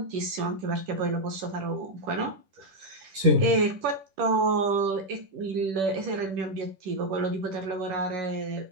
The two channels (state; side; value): late; left; 10 ms